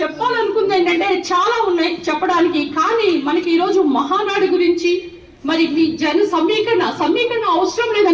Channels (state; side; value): identical; both; correlation 1.00